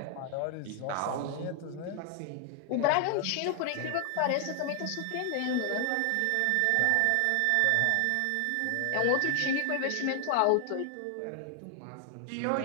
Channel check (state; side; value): different; both; correlation 0.00